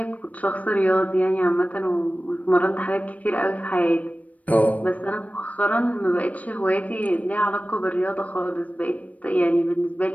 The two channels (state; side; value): late; right; 0.069 ms